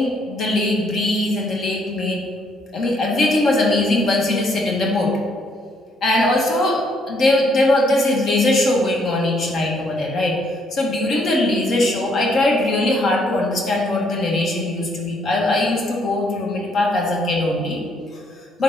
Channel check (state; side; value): normal; both; correlation 0.69